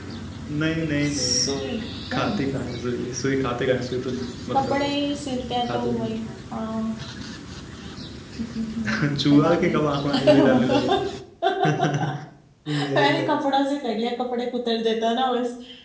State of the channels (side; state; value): both; identical; correlation 1.00